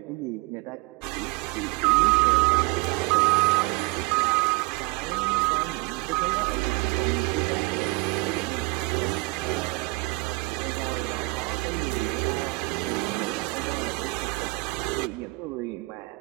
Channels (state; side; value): quieter; left; 25.2 dB